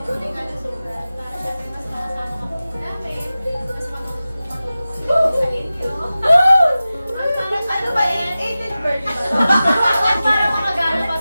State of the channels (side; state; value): both; inverted; correlation -0.95